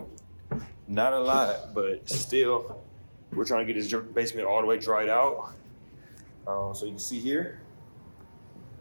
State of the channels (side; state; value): both; inverted; correlation -1.00